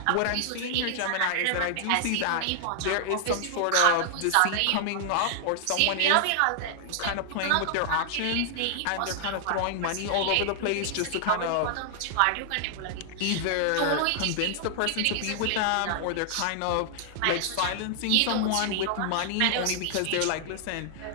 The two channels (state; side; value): different; both; correlation -0.01